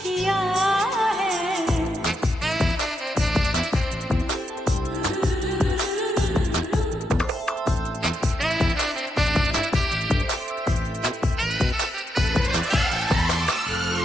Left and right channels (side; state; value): both; normal; correlation 0.82